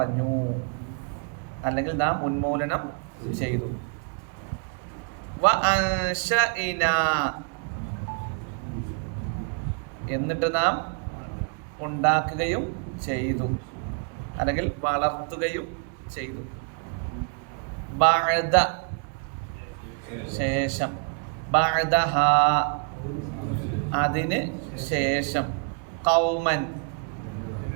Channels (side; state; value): left; quieter; 39.6 dB